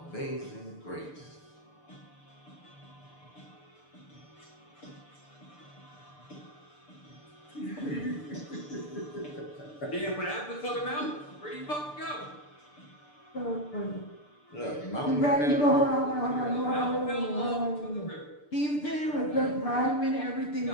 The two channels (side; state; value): right; late; 6.8 ms